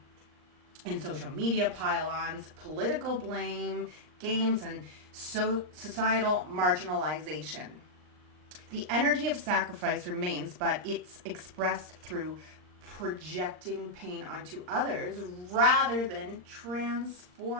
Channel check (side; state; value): left; late; 39 ms